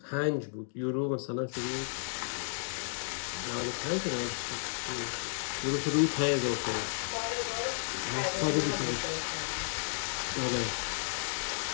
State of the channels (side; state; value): right; silent; digital silence